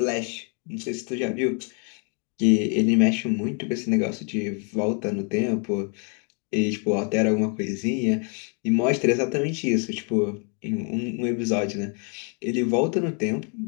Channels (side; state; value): right; quieter; 38.4 dB